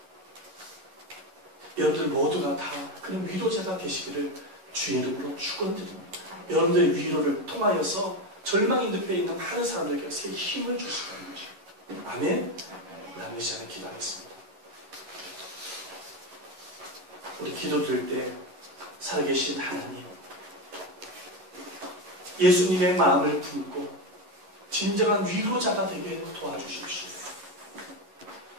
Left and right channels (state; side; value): late; left; 11 ms